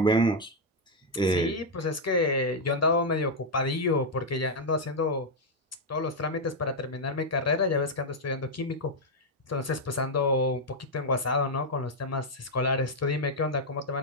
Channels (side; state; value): both; normal; correlation 0.00